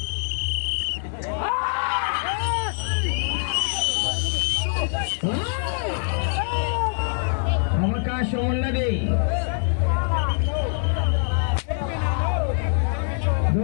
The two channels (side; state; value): right; silent; digital silence